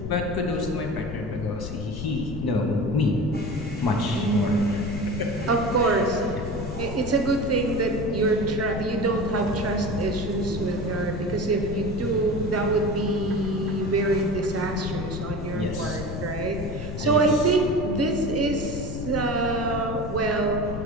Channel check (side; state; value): left; noise; rumble, 6 dB below the sound